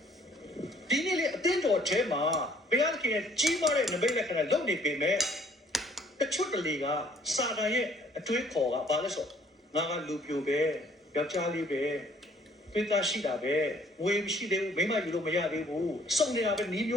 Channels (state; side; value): normal; both; correlation 0.60